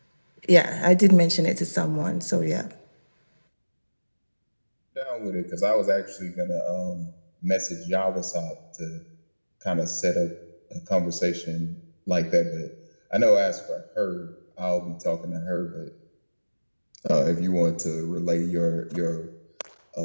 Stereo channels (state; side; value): inverted; both; correlation -1.00